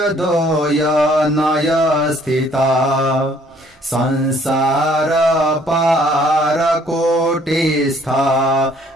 नय स्थिता संसार पार कोटिस्था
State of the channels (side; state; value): both; normal; correlation 0.61